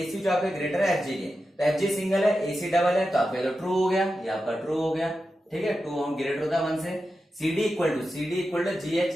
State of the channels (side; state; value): both; normal; correlation 0.91